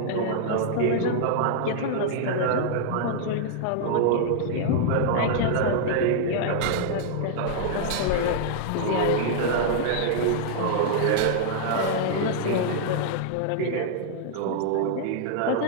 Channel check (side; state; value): both; different; correlation -0.01